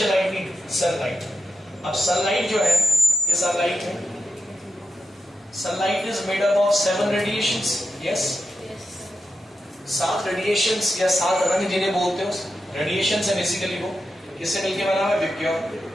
लाइट भी सनलाइट। अब सनलाइट जो है, ये सनलाइट है, sunlight is made up of 7 radiations. Yes, 7 radiations या 7 रंग जिन्हें बोलते हो रेडिएशंस है बेसिकली। वो किससे मिलके बना हुआ है? विबग्योर।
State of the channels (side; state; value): both; normal; correlation 0.87